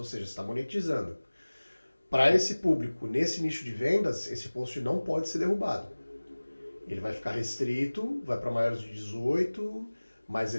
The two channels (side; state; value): both; inverted; correlation -1.00